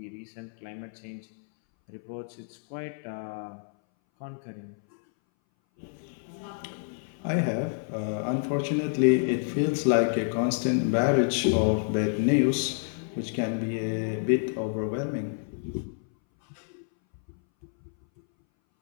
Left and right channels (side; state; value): right; silent; 59 dB below the other